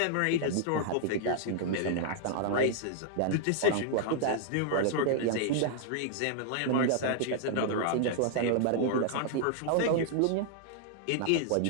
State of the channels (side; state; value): both; different; correlation -0.01